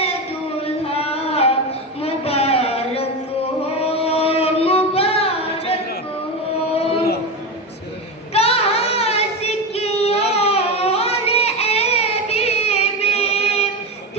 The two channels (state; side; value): normal; both; correlation 0.18